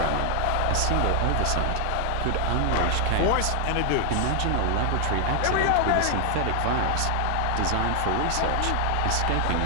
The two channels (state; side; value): different; both; correlation 0.00